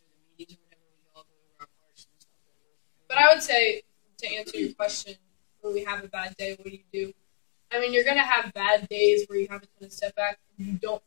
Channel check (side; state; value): right; silent; digital silence